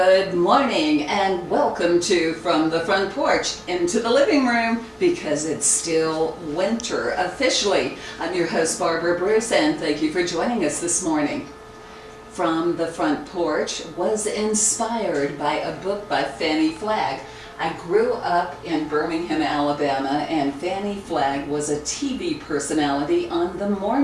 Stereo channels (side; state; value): both; identical; correlation 1.00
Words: morning and welcome to From the Front Porch into the Living Room, because it's still winter officially. I'm your host Barbara Bruce, and thank you for joining us this morning. From the Front Porch was inspired by a book by Fannie Flagg. I grew up in Birmingham, Alabama, and Fannie Flagg was a TV personality on the